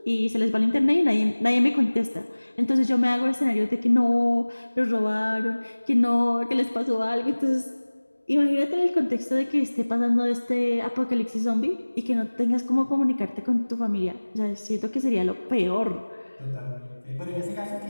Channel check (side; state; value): both; inverted; correlation -1.00